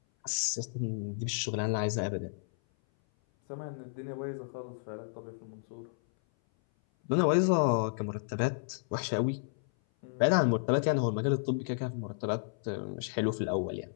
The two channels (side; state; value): right; silent; 56 dB below the other